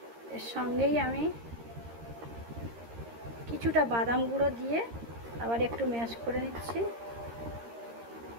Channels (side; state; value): left; late; 13 ms